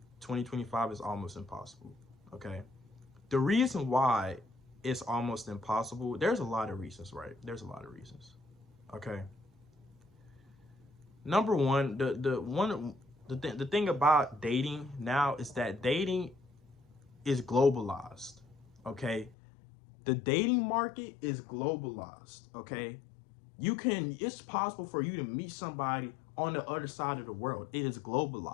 2025 is almost impossible. Okay, the reason why it's almost impossible, there's a lot of reasons, right? There's a lot of reasons. Okay, number one, the thing about dating now is that dating is globalized. Okay, the dating market is globalized. Okay, it's possible for you to meet somebody on the other side of the world. It is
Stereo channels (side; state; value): right; drops out; at 19.4 s